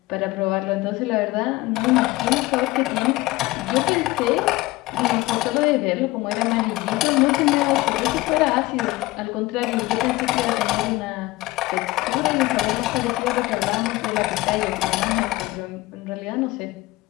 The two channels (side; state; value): right; quieter; 19.4 dB